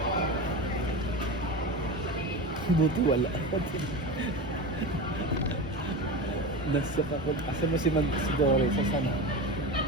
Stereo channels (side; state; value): both; normal; correlation 0.25